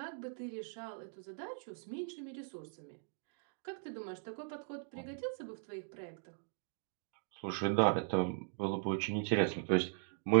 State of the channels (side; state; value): left; silent; digital silence